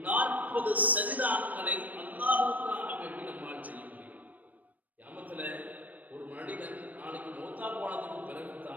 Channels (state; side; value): late; left; 0.078 ms